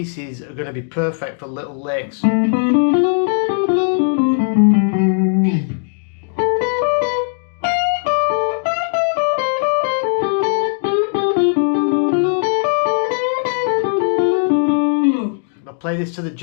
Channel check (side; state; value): right; silent; digital silence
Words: are going to be perfect for little licks. I'll play this to the